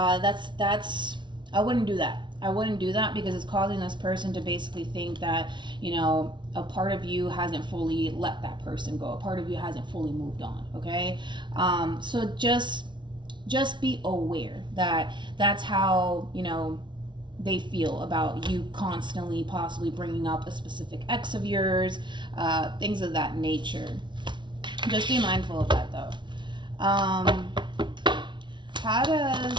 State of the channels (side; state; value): left; late; 0.23 ms